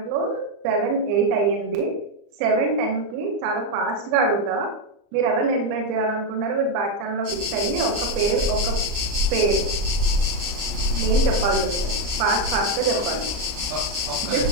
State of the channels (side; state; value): left; late; 34 ms